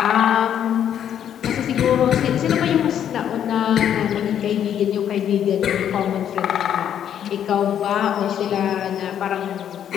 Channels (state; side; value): quieter; right; 9.6 dB